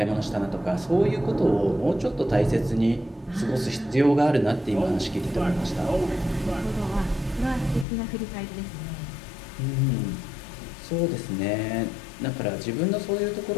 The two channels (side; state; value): right; drops out; at 7.9 s